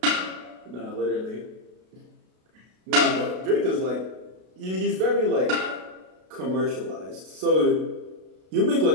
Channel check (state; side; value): late; left; 32 ms